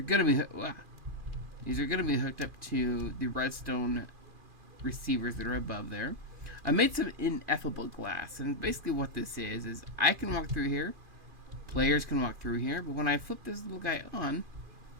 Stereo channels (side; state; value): left; late; 2.5 ms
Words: going to be hooked up to the redstone receivers that are above there. I made some ineffable glass, and basically what this is I can walk through here, players can walk through here, but when I flip this little guy on,